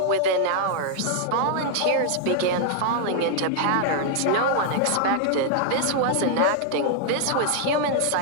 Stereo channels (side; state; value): both; different; correlation 0.00